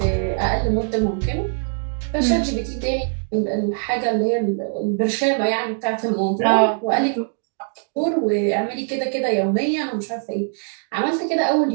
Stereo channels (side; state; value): left; silent; 57 dB below the other